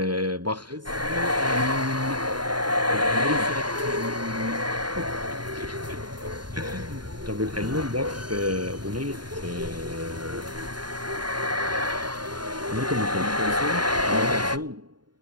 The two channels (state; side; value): late; left; 0.71 ms